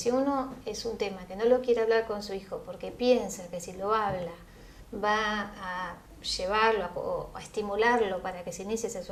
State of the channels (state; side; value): identical; both; correlation 1.00